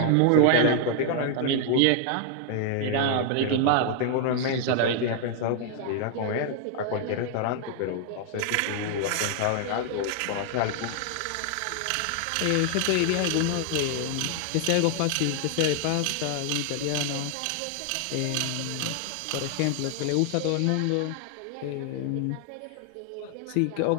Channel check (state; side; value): different; both; correlation 0.00